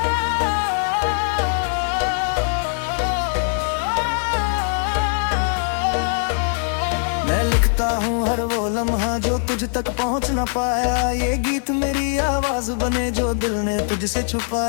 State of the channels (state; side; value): silent; right; 65 dB below the other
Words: मैं लिखता हूँ हर वो लम्हा जो तुझ तक पहुँच ना पाया, ये गीत मेरी आवाज बने जो दिल ने तुझसे